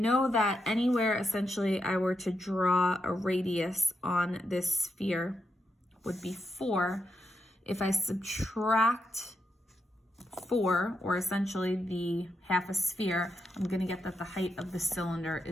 that anywhere essentially I were to draw a radius on this sphere would be 4. If I subtract 4, or essentially the half a sphere, I'm going to get that the height of the cylinder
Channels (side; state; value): both; normal; correlation 0.83